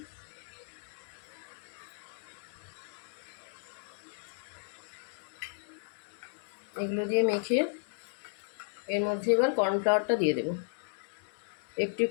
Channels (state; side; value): silent; right; 55 dB below the other